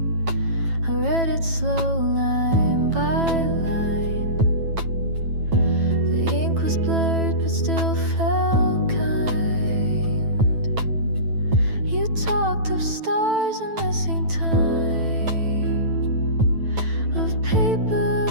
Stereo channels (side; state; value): left; late; 9.1 ms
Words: I read it slow, line by line. The ink was blurred but still felt kind. You talked of stars and missing time, of paper